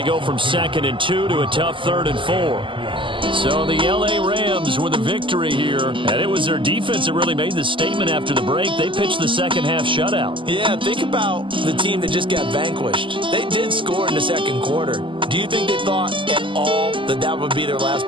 go from 2nd and 2 to a tough 3rd and 4. So the L.A. Rams with a victory here, and it was their defense that really made the statement after the break. They pitched the second half shutout. Yeah, think about the team that just got vanquished. They did score in the second quarter. Do you think they thought at all that that would be their last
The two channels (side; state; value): left; late; 0.25 ms